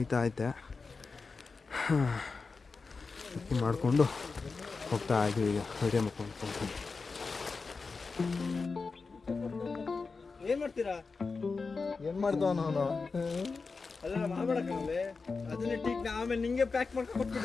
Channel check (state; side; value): quieter; right; 4.4 dB